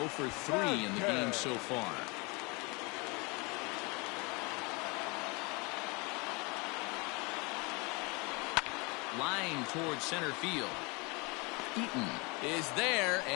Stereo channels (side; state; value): right; quieter; 28.5 dB